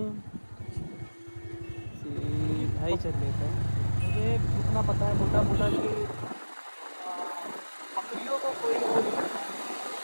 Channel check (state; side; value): inverted; both; correlation -1.00